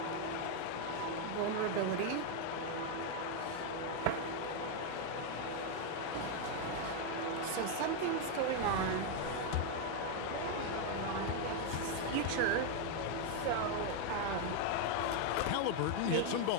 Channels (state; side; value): different; both; correlation 0.01